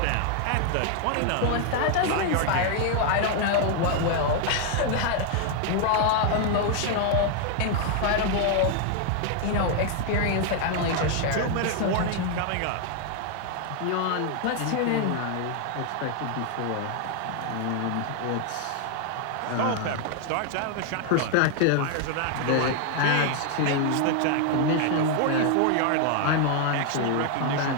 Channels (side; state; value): both; different; correlation 0.00